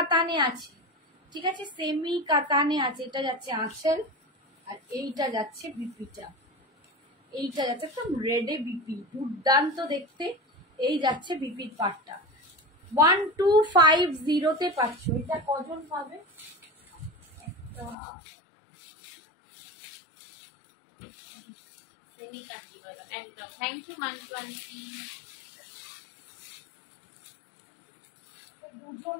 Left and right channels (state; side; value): drops out; right; at 17.9 s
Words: আছে, ঠিক আছে, সেমি কাতানে আছে। এটা যাচ্ছে আঁচল, আর এইটা যাচ্ছে বিপিটা, এইটা যাচ্ছে একদম রেডে বিপি, দুর্দান্ত দেখতে। এই যাচ্ছে বিপির পাটটা 1250 তে পাচ্ছ। এটা কজন পাবে? सेमी काटी वाला एकदम। Thank you Mantu aunty. দুজন